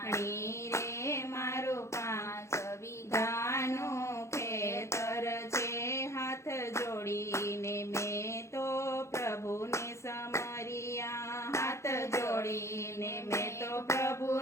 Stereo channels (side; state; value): right; late; 0.14 ms